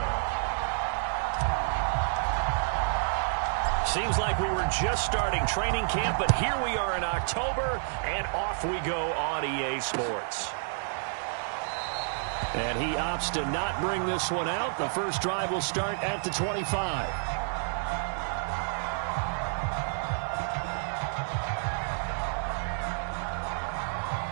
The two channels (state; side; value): silent; left; digital silence